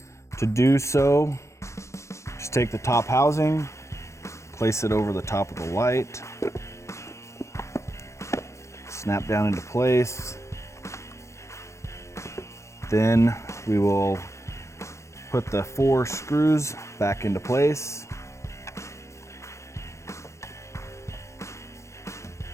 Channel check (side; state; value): right; late; 0.14 ms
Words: To do so, just take the top housing, place it over the top of the light, snap down into place. Then we will put the 4 screws back into place.